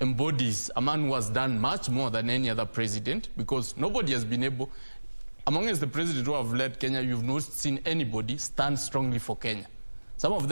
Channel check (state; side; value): inverted; both; correlation -1.00